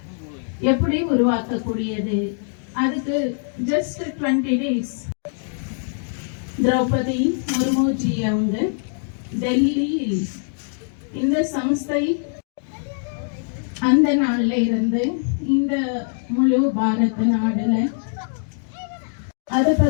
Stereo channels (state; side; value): silent; right; digital silence